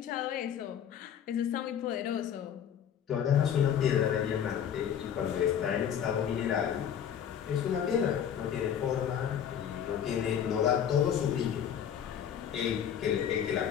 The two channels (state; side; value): quieter; right; 8.9 dB